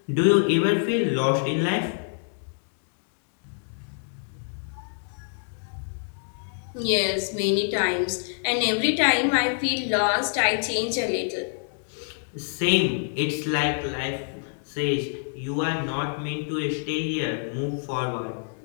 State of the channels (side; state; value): right; silent; digital silence